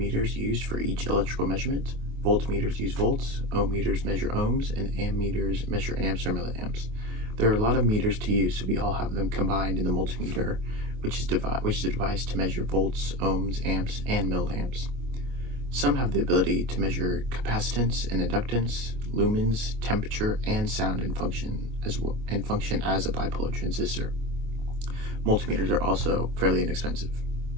used for each electrical measurement. Voltmeters use volts, ohm meters measure ohms, and ammeters measure amps or milliamps. There are a lot of meters to use, so we all have them combined in the multimeter, which is a device to measure volts, ohms, amps, and milliamps. Some have the ability to measure capacitance and inductance, lumens, temperature, and sound and function as a bipolar transistor. Multimeters are also fairly inexpensive.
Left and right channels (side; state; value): left; late; 25 ms